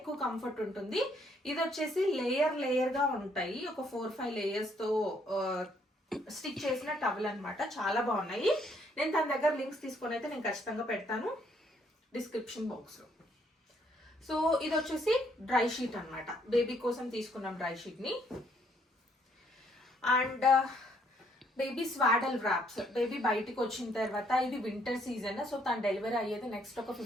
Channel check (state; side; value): normal; both; correlation 0.68